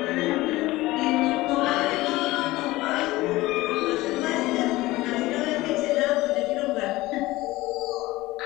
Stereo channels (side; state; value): right; quieter; 18.9 dB